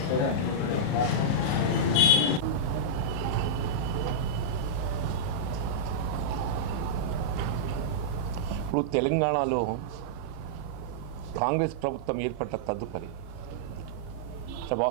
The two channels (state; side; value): late; right; 34 ms